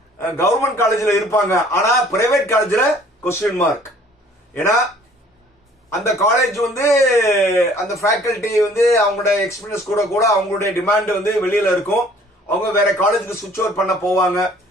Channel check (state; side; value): normal; both; correlation 0.55